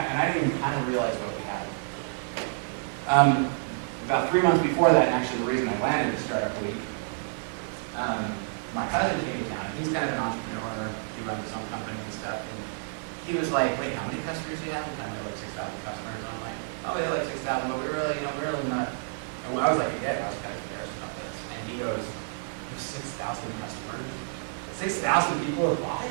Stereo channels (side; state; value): left; silent; 58 dB below the other